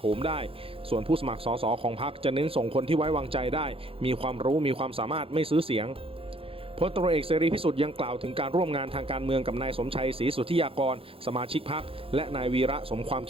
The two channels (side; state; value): left; late; 0.27 ms